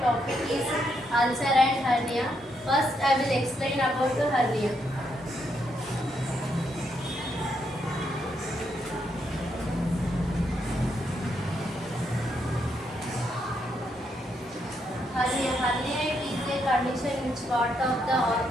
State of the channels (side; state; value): both; normal; correlation 0.78